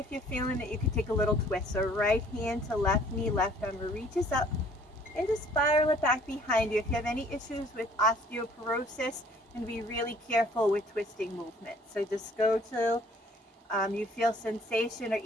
you're feeling that you can take a little twist. So right hand to left knee, left arm reaches up, and just spiral it back behind you. If you have any issues with osteoporosis, and be really careful with twisting movement. So just go till you feel sensation, or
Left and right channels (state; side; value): normal; both; correlation 0.57